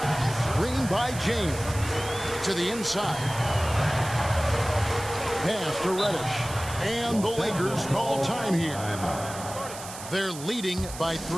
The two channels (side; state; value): right; noise; hiss, 12 dB below the sound